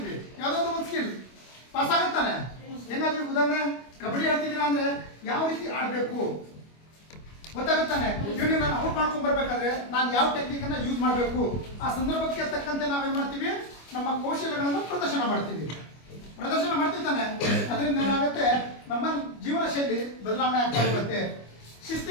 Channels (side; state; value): right; late; 25 ms